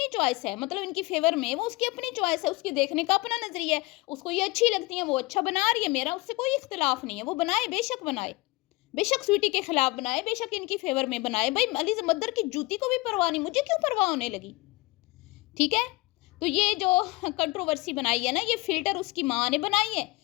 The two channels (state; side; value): quieter; right; 22.5 dB